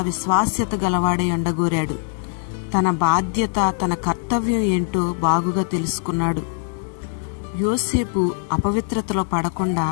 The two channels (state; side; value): silent; right; digital silence